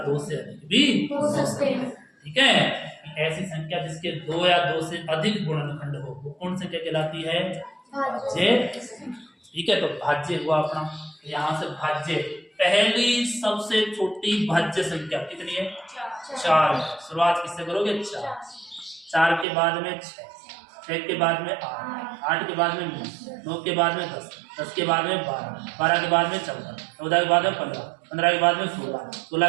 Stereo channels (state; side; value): drops out; left; at 19.5 s